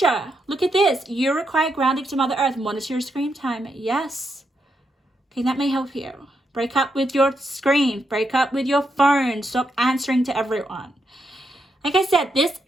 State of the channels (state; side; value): normal; both; correlation 0.81